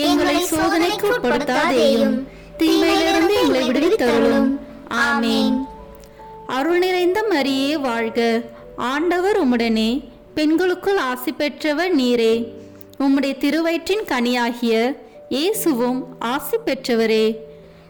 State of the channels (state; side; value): identical; both; correlation 1.00